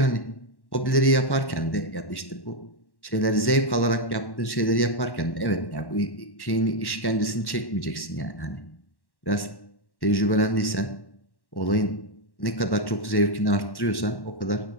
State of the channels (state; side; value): late; right; 1.1 ms